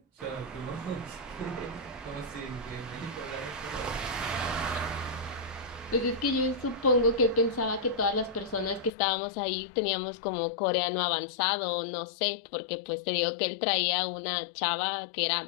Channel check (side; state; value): right; drops out; at 8.9 s